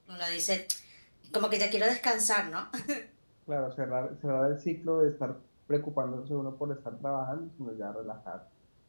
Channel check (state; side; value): inverted; both; correlation -1.00